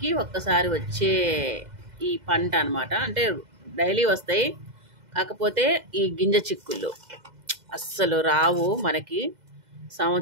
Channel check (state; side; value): late; left; 2.0 ms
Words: ఒక్కసారి వచ్చే ఈ పంట అనమాట. అంటే డైలీ వస్తాయి, కాకపోతే ఈ గింజ చిక్కుళ్ళు అస్సలు రావు మనకి,